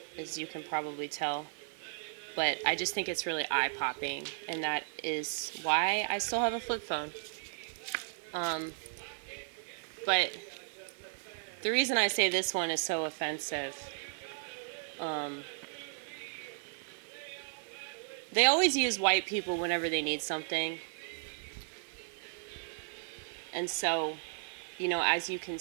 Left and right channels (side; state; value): left; silent; 54 dB below the other